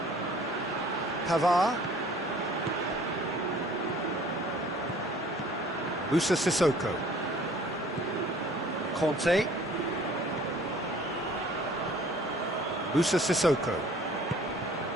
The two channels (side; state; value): both; normal; correlation 0.52